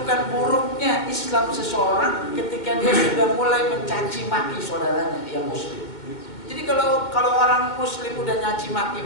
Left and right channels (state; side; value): late; right; 2.1 ms